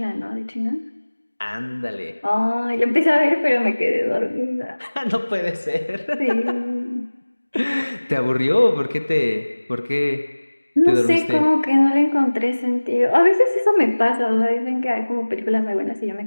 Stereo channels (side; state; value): both; inverted; correlation -1.00